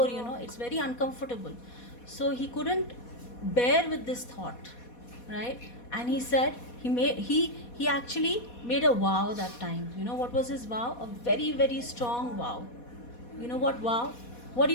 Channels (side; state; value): right; late; 4.2 ms